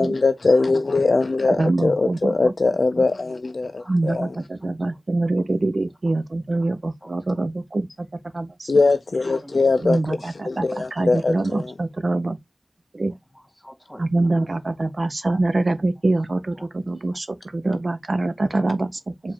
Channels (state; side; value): normal; both; correlation 0.95